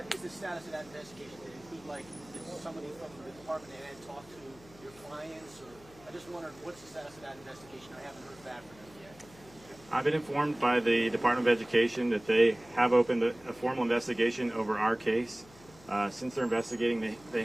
is the status of that investigation? Did it include, like, did somebody from the Department of Ed talk to your clients? Or I just wondered, what's the status of that investigation? I haven't heard back from them yet. I've been informed by the Department of Education that they have opened a formal investigation over our case. Since they're investigating, they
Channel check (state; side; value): noise; left; hum, 23 dB below the sound